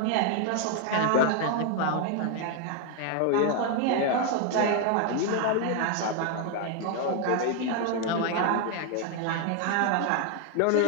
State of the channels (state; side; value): different; both; correlation 0.01